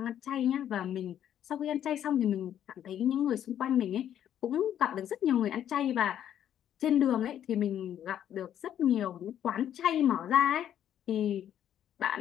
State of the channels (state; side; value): quieter; right; 10.4 dB